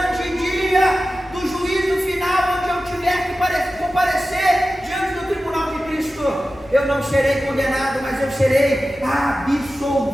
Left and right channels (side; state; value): left; noise; rumble, 26 dB below the sound